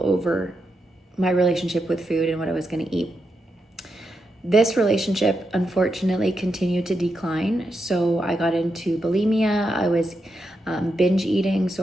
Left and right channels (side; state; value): both; normal; correlation 0.85